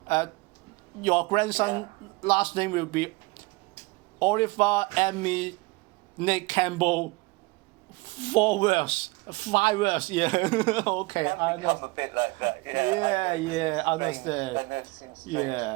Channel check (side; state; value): left; quieter; 24.4 dB